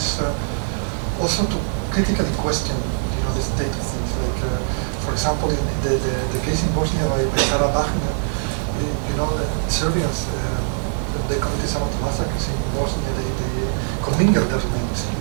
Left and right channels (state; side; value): silent; left; 64 dB below the other